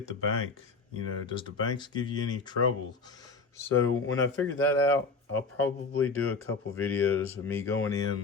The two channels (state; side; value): quieter; right; 4.2 dB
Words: the bank? Does the banks give you any trouble? So when I figure that out, I'll probably do a couple videos of me going